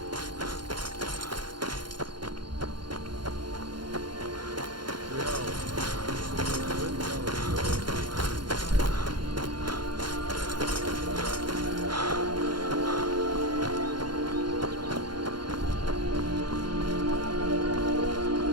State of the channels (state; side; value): late; left; 0.72 ms